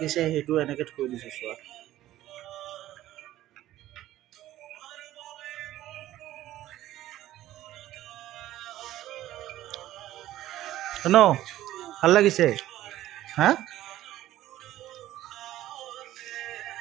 সেইটো এনেকে থৈ দিছে। চোৱা ন, ভাল লাগিছে হা?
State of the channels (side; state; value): left; quieter; 14.2 dB